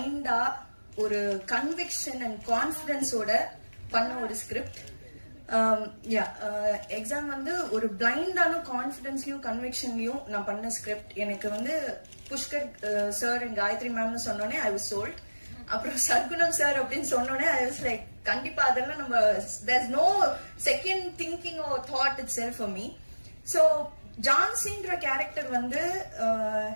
ஒரு கன்விக்ஷன் அண்ட் கான்பிடன்ஸோட பண்ண ஒரு ஸ்கிரிப்ட். எக்ஸாம் ஒரு பிளைண்டான கான்பிடன்ஸ்லயும் கன்விக்ஷன்லயும் நான் பண்ண ஸ்கிரிப்ட். எனக்கு புஷ்கர் சார் அண்ட் காயத்ரி மேம்னு சொன்னோடனே ஐ வாஸ் சோல்ட். அப்புறம் சர்க்குணம் சார் அப்படின்னு சொன்னோடனே ஐ வாஸ் லைக், கண்டிப்பா அதெல்லாம் நம்ம there is no second thinking or thought itself for me. So ஜான்சின்ற character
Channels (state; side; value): inverted; both; correlation -1.00